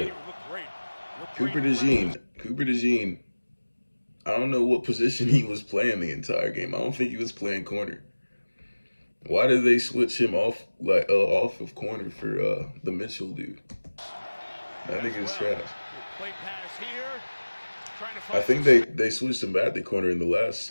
it. Cooper DeJean, I don't know what position he was playing the entire game. I don't think he was playing corner. Why did they switch him off off of corner for the Mitchell dude? That nigga's trash. I think they switched him back to corner in the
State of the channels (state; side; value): inverted; both; correlation -1.00